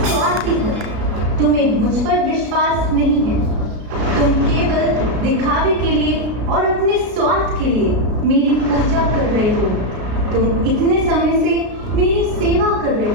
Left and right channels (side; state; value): left; late; 33 ms